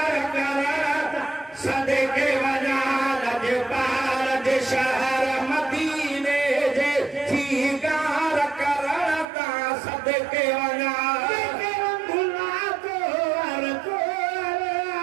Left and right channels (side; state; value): left; drops out; at 9.2 s